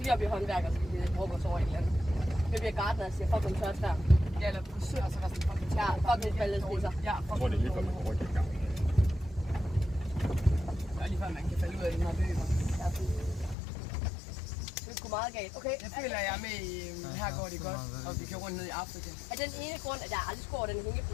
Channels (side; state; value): right; drops out; at 13.6 s